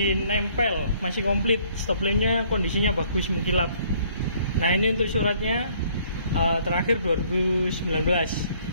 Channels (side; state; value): both; inverted; correlation -0.62